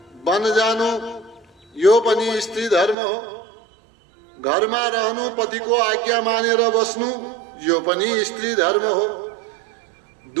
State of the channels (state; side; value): drops out; left; at 3.0 s